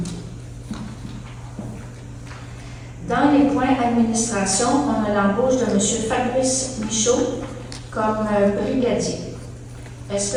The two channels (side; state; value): both; identical; correlation 1.00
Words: Dans les points administration, on a l'embauche de M. Fabrice Michaud comme brigadier. Est-ce